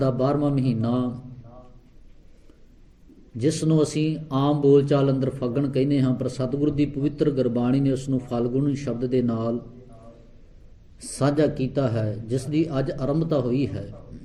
12ਵਾਂ ਮਹੀਨਾ, ਜਿਸ ਨੂੰ ਅਸੀਂ ਆਮ ਬੋਲਚਾਲ ਅੰਦਰ ਫੱਗਣ ਕਹਿੰਦੇ ਹਾਂ, ਪਰ ਸਤਿਗੁਰੂ ਦੀ ਪਵਿੱਤਰ ਗੁਰਬਾਣੀ ਨੇ ਉਸ ਨੂੰ ਫਾਲਗੁਨ ਸ਼ਬਦ ਦੇ ਨਾਲ ਸਾਂਝਾ ਕੀਤਾ ਹੈ, ਜਿਸ ਦੀ ਅੱਜ ਆਰੰਭਤਾ ਹੋਈ ਹੈ।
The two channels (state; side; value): identical; both; correlation 1.00